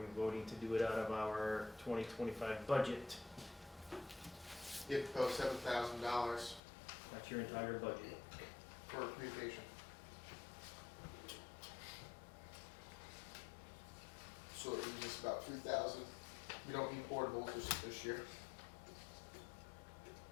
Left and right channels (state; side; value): drops out; right; at 6.6 s